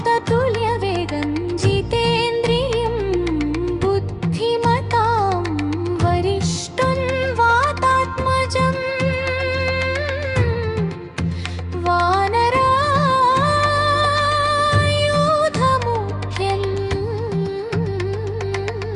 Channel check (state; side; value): identical; both; correlation 1.00